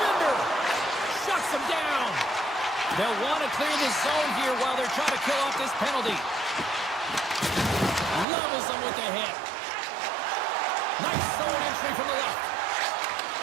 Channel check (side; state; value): left; drops out; at 8.2 s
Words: Shuts him down. They'll want to clear the zone here while they're trying to kill off this penalty. Levels them with the hit. Nice zone entry from the left.